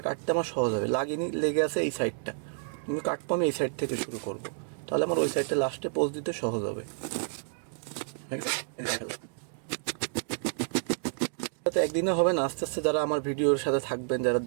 কাটতে আমার সহজ হবে। লাগিনি, লেগে আছে এই সাইডটা, কিন্তু কাটবো আমি এই সাইড থেকে শুরু করব, তাহলে আমার ওই সাইডটা লাস্টে পোজ দিতে সহজ হবে। তো একদিনে হবে না, আস্তে আস্তে যারা আমার ভিডিওর সাথে থাকবেন, যারা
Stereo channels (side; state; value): left; silent; 58 dB below the other